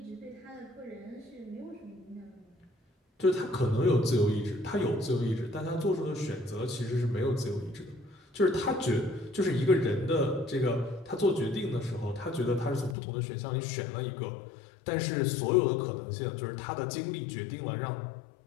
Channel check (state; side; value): drops out; right; at 13.0 s